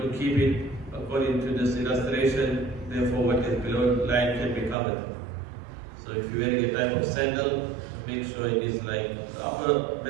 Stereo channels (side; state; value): left; drops out; at 4.8 s